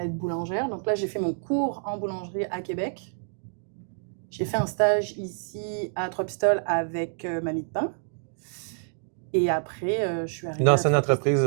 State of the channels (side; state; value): left; silent; digital silence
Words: être boulangère. Donc là, j'ai fait mon cours en boulangerie à Québec. J'ai fait un stage ici à Trois-Pistoles avec Mamie de Pain. Et après, je suis arrivée dans une entreprise